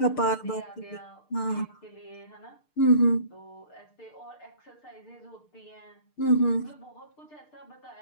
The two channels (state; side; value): late; right; 6.6 ms